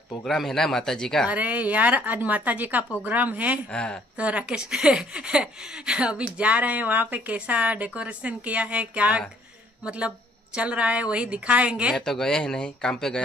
प्रोग्राम है ना माता जी का। अरे यार, आज माता जी का प्रोग्राम है। हाँ। तो राकेश अभी जा रहे हैं वहाँ पे। कैसा डेकोरेशन किया है, क्या मतलब चल रहा है, वही दिखाएंगे। मैं तो गया ही नहीं, काम पे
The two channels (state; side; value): normal; both; correlation 0.62